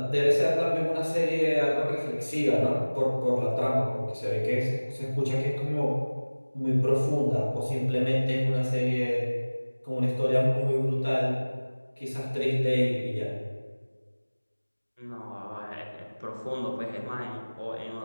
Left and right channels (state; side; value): inverted; both; correlation -1.00